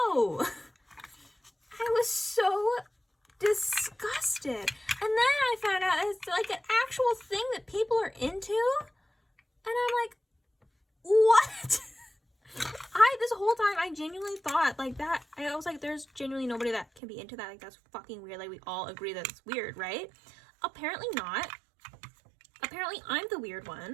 I was so disgusted. And then I found out it's like an actual thing that people are into. And I'm like, what? This whole time I genuinely thought like that. I was like, there's genuinely nobody that can be into that. Like, that's fucking weird. Like, we all agree that it's weird, right? apparently not. Apparently I'm the weird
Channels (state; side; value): drops out; left; at 17.0 s